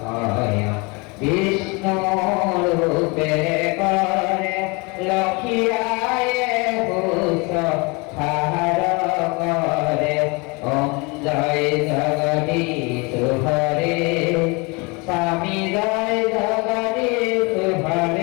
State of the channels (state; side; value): quieter; right; 28.5 dB